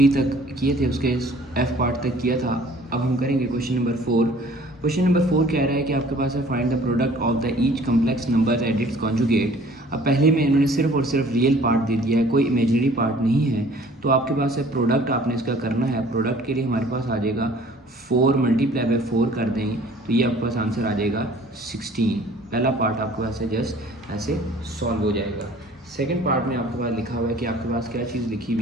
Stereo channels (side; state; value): both; normal; correlation 0.52